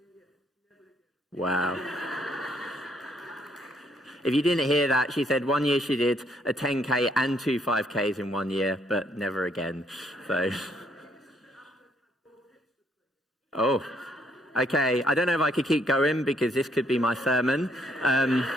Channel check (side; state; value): both; normal; correlation 0.70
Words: Wow. If you didn't hear that, she said 1 year she did a 10K and 2 5Ks in 1 year, but never again. So, oh, okay. I don't know if I could keep going because this could be my sermon.